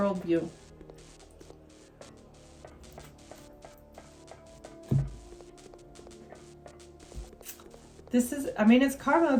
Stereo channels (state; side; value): identical; both; correlation 1.00